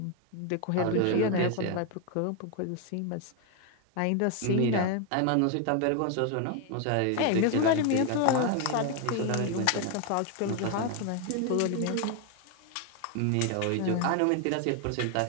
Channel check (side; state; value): both; different; correlation 0.01